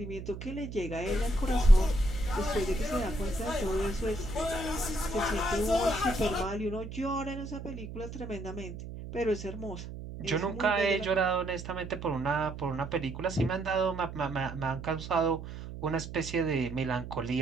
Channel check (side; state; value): right; noise; hum, 10 dB below the sound